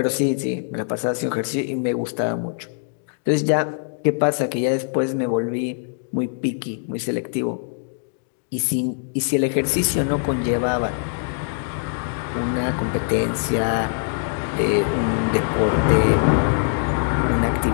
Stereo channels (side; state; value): right; silent; digital silence